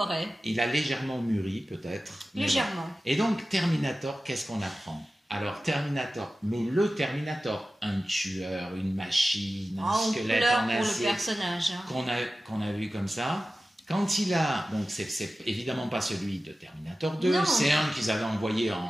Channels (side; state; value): both; normal; correlation 0.95